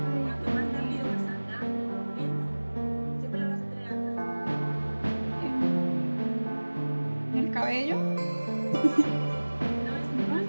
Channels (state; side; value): inverted; both; correlation -1.00